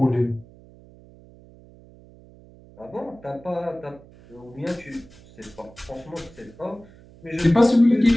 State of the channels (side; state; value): right; noise; hum, 23 dB below the sound